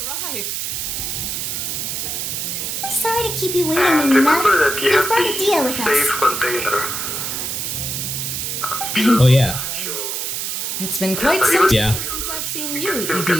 Sorry to keep you waiting, And Minuna. remember that you You've have brought a deal with the us. safe container. Oh yeah. It's been quite some time Yeah. since I've seen you, Still get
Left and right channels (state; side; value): noise; right; hiss, 3 dB below the sound